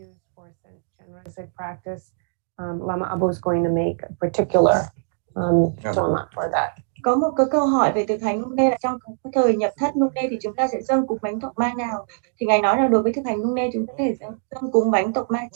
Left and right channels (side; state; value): left; silent; digital silence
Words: practice, Lama Abao is going to make a particular Torma for that. Có một cái câu hỏi về thực hành Nyumne là trong cái thời nhập thất Nyumne thì chúng ta sẽ dâng cúng bánh Torma nào? Thì Ngài nói là đối với thực hành Nyumne chúng ta có thể dâng cúng bánh Torma